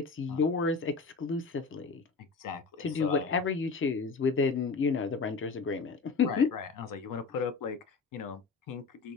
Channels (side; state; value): right; quieter; 4.6 dB